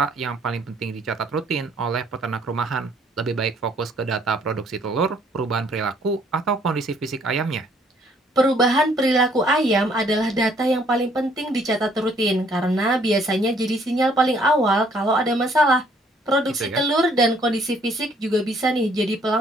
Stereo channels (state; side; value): normal; both; correlation 0.63